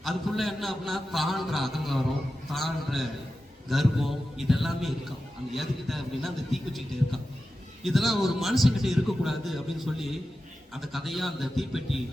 அதுக்குள்ள என்ன அப்படின்னா தாழ்ற அகங்காரம், தாழ்ற கர்வம், இதெல்லாமே இருக்கான். அந்த எதுக்கிட்ட அப்படின்னா அந்த தீக்குச்சிக்கிட்ட இருக்கான். இதெல்லாம் ஒரு மனுஷங்கிட்ட இருக்கக்கூடாது அப்படின்னு சொல்லி அந்த கதையா அந்த தீப்பெட்டி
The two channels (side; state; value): both; normal; correlation 0.92